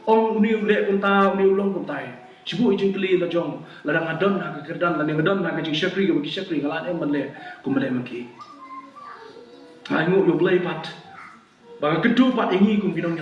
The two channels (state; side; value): identical; both; correlation 1.00